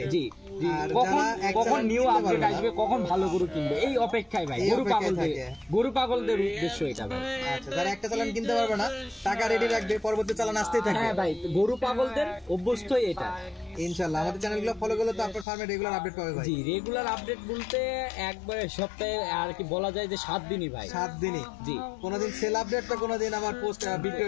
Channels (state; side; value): drops out; right; at 15.5 s